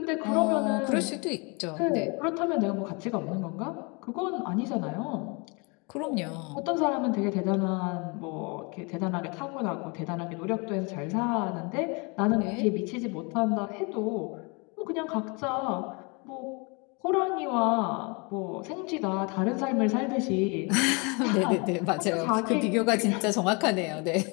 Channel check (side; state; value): right; quieter; 30.8 dB